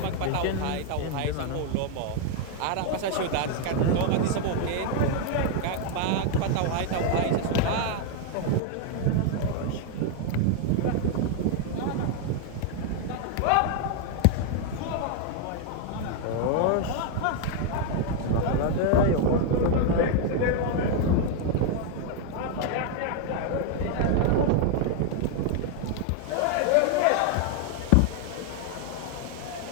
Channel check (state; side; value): different; both; correlation 0.00